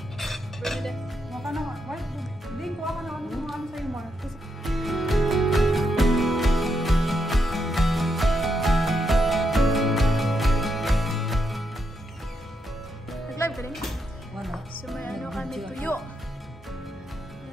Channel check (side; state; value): both; normal; correlation 0.81